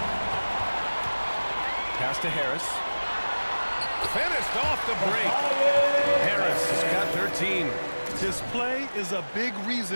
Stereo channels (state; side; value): inverted; both; correlation -1.00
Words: Pass to Harris. Finished off the break. Harris has got 13. His play is a big